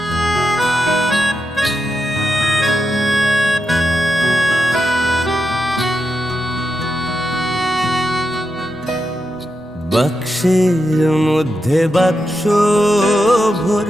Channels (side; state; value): both; normal; correlation 0.86